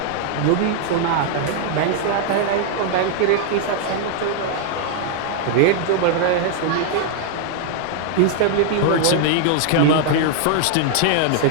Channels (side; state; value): both; different; correlation 0.00